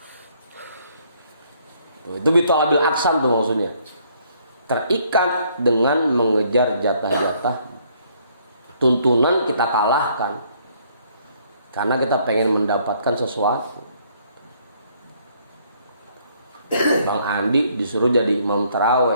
Itu bitolabil aksam tuh maksudnya. Terikat dengan mengejar jatah-jatah. Tuntunan kita kalahkan karena kita pengen mendapatkan sesuatu. Bang Andi disuruh jadi imam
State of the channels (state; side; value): inverted; both; correlation -0.65